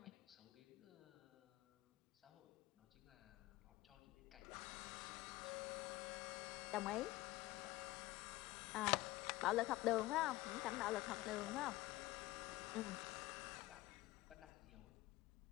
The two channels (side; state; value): right; quieter; 18.5 dB